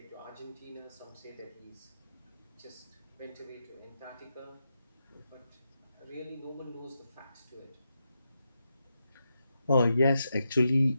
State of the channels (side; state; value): both; inverted; correlation -0.86